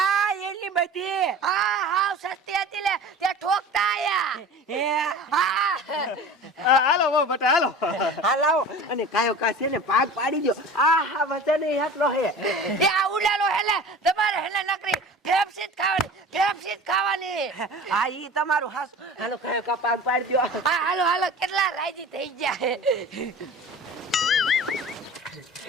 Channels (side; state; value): both; normal; correlation 0.38